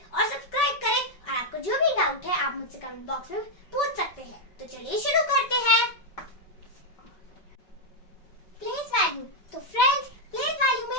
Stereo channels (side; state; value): right; late; 5.3 ms